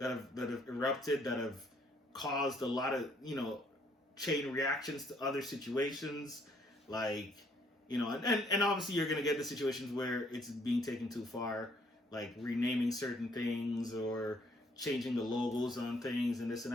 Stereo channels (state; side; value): normal; both; correlation 0.65